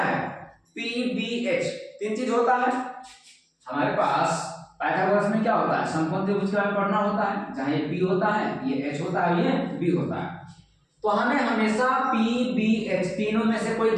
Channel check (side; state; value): both; identical; correlation 1.00